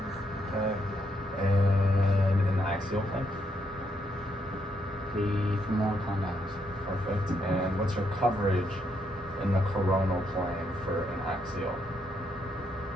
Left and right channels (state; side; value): normal; both; correlation 0.77